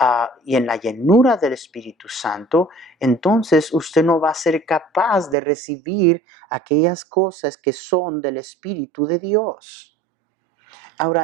y en la llenura del Espíritu Santo, entonces usted no va a ser capaz de recibir aquellas cosas que son del Espíritu de Dios.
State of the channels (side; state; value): left; drops out; at 5.4 s